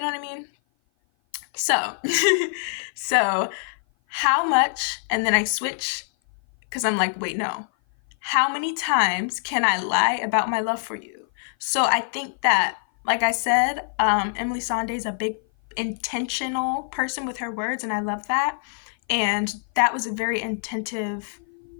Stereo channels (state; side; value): silent; right; 56 dB below the other